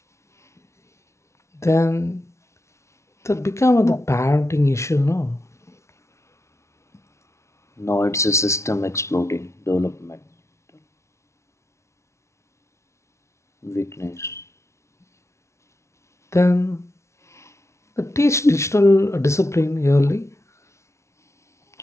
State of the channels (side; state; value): right; late; 0.13 ms